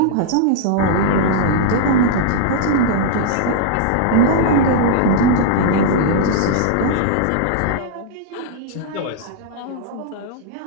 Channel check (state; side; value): different; both; correlation -0.01